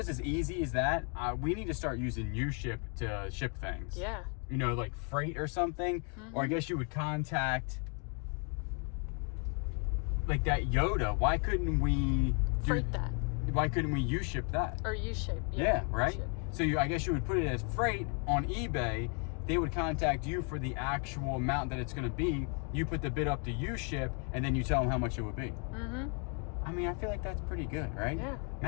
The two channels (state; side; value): quieter; right; 38.3 dB